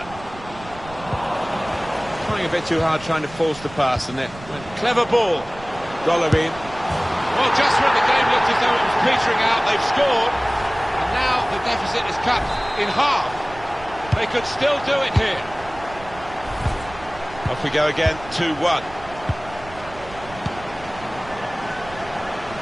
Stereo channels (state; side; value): noise; right; rumble, 18 dB below the sound